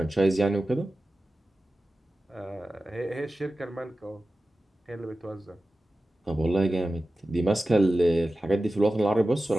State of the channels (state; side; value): normal; both; correlation 0.95